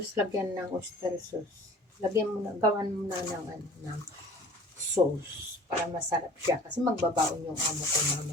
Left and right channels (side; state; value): both; normal; correlation 0.47